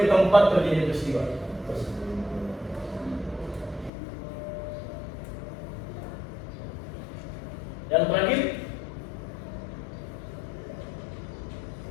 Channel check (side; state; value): right; drops out; at 3.9 s